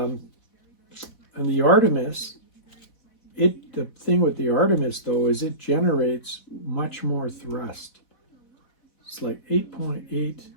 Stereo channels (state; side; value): late; right; 4.1 ms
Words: the Artemis, the thing with the Artemis though is it generates much more thrust. It's like 8.8